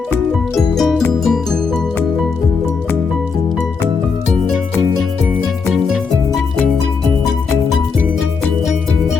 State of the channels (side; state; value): right; quieter; 5.2 dB